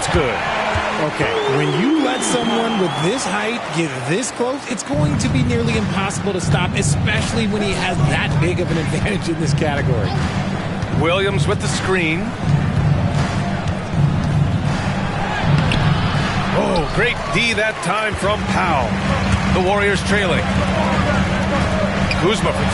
good. Okay, when you let someone with this height get this close, it's going to be nearly impossible to stop, especially when he has that big of an advantage in this category. Williams with the screen. Oh, great D that time from Powell. The Warriors trailing. Kuzma for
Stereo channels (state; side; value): identical; both; correlation 1.00